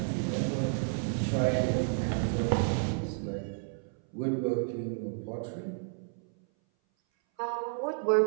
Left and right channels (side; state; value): left; silent; 57 dB below the other